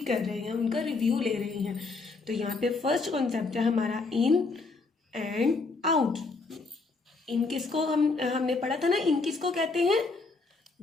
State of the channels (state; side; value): quieter; right; 3.9 dB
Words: कर रहे हैं, उनका रिव्यू ले रहे हैं. तो यहाँ पे फर्स्ट कॉन्सेप्ट है हमारा इन एंड आउट. इन किसको हमने पढ़ा था ना, इन किसको कहते हैं?